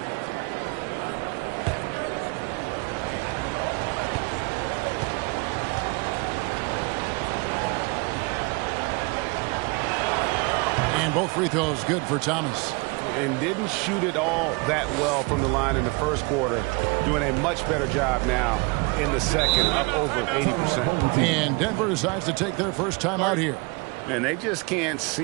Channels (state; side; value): quieter; left; 28.5 dB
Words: Both free throws good for Thomas. And didn't shoot it all that well from the line in the first quarter. Doing a much better job now in the second, up over 80%. And Denver decides to take their first time out here. And they just can't